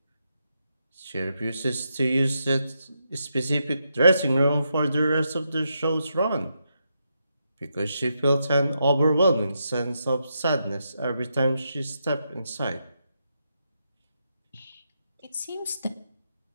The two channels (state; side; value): inverted; both; correlation -0.83